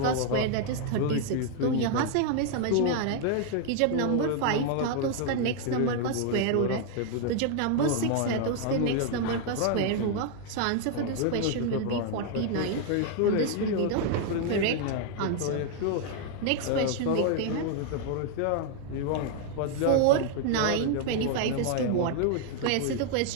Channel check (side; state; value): both; different; correlation 0.00